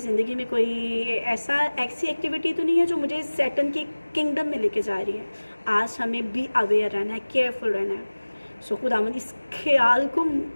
में कोई ऐसी एक्टिविटी तो नहीं है जो मुझे सैटन के किंगडम में लेके जा रही है। आज हमें बी अवेयर रहना है, केयरफुल रहना है। खुदावंद इस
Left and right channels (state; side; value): inverted; both; correlation -1.00